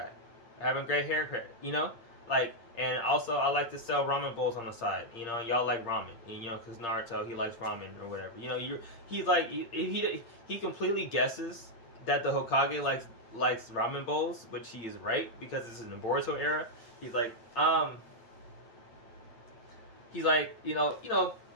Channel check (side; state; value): right; late; 8.7 ms